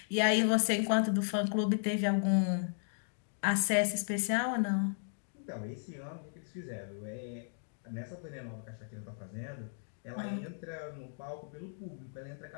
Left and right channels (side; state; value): right; silent; digital silence